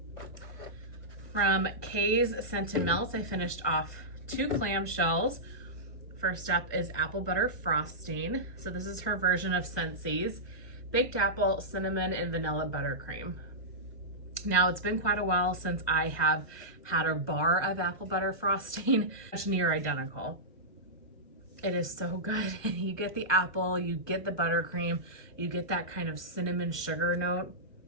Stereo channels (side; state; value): right; late; 1.2 ms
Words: From Kae Scented Melts, I finished off 2 clamshells. First up is Apple Butter Frosting. So this is her version of Scentsy's baked apple, cinnamon, and vanilla buttercream. Now it's been quite a while since I have had a bar of apple butter frosting. It's near identical. It is so good. You get the apple, you get the buttercream, you get that kind of cinnamon sugar note.